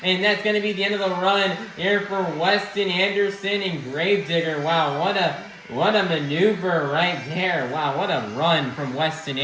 and that's going to be the end of the run here for Weston Anderson and Gravedigger. Wow, what a maneuver right there. Wow, what a run from Weston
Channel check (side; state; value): both; identical; correlation 1.00